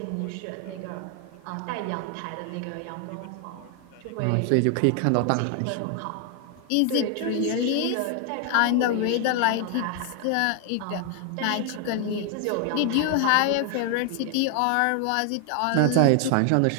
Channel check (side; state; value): both; different; correlation 0.00